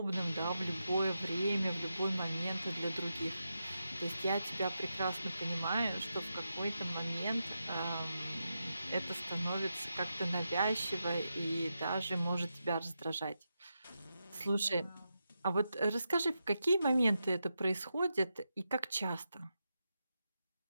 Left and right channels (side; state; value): both; inverted; correlation -0.87